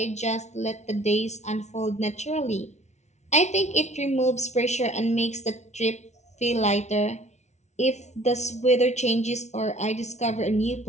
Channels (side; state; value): right; late; 0.32 ms